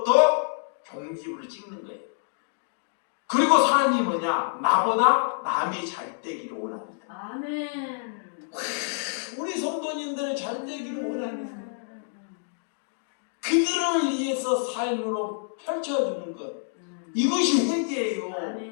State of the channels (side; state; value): right; silent; digital silence